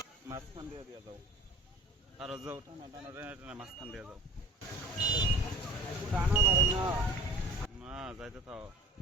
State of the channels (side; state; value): both; normal; correlation 0.42